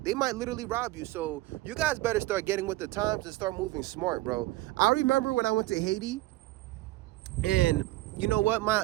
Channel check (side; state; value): left; quieter; 18.2 dB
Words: might literally rob you. So you guys better start getting with the times and start moving smart, bro. I remember when I went to Haiti, and you know what?